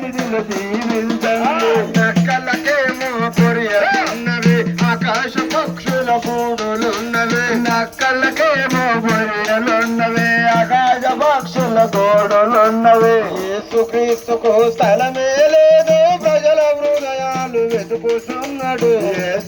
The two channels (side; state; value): both; identical; correlation 1.00